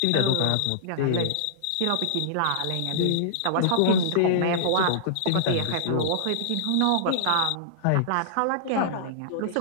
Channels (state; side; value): different; both; correlation -0.02